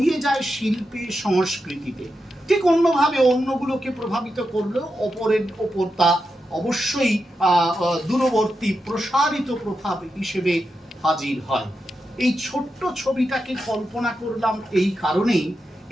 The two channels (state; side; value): normal; both; correlation 0.88